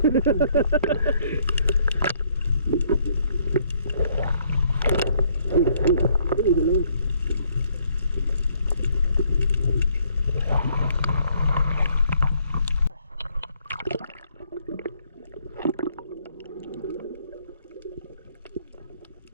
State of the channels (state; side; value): inverted; both; correlation -0.67